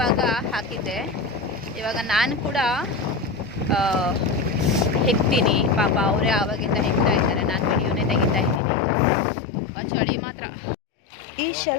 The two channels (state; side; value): drops out; right; at 8.6 s